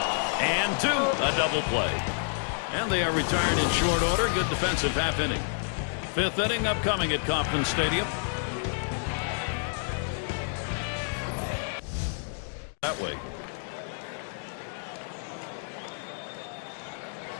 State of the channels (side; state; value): right; silent; digital silence